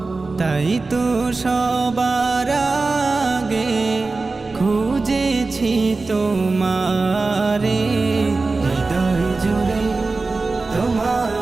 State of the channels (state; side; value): quieter; left; 3.7 dB